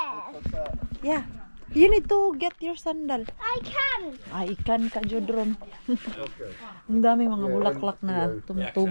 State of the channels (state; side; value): inverted; both; correlation -1.00